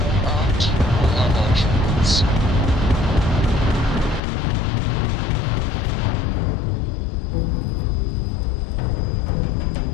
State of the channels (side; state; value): right; drops out; at 4.2 s